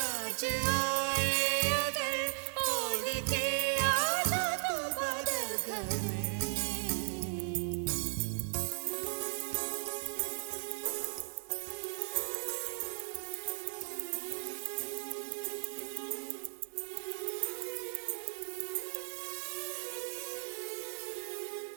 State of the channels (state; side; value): silent; left; digital silence